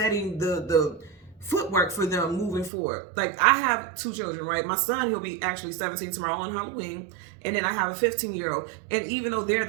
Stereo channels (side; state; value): left; drops out; at 2.7 s